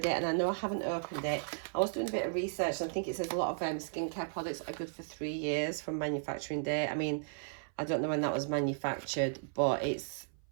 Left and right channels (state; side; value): silent; left; 54 dB below the other